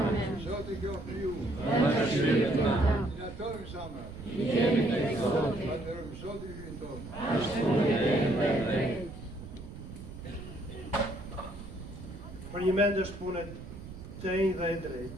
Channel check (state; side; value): noise; right; rumble, 13 dB below the sound